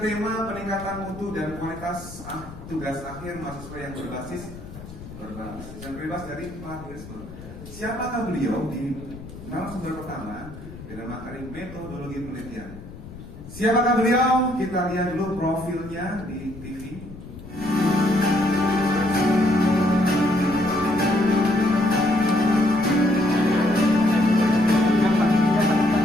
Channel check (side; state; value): left; noise; rumble, 15 dB below the sound